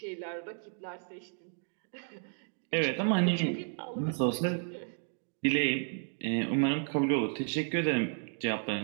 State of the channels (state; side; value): silent; left; 56 dB below the other